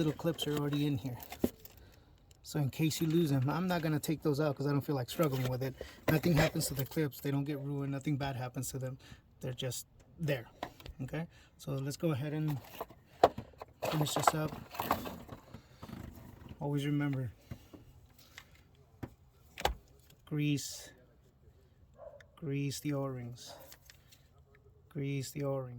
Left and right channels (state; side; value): identical; both; correlation 1.00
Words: clips are already in here. So in case you lose them, I'm not going to take those out because I don't feel like struggling with it. Nothing happens to the clips. They don't get ruined. Nothing bad happens to them. They're just there. Okay? So let's go ahead and finish this up. Always remember, grease the O-rings. Grease the